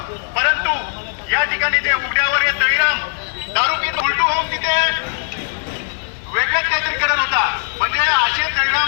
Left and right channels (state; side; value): silent; right; digital silence